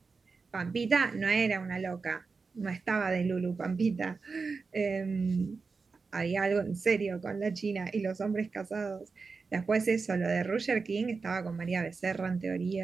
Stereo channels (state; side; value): quieter; left; 4.6 dB